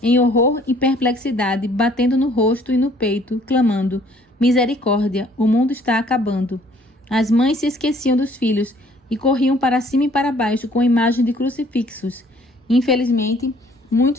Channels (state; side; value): normal; both; correlation 0.59